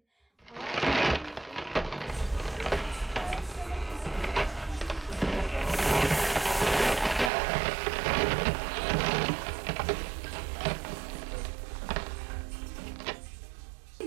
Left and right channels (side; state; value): left; drops out; at 7.3 s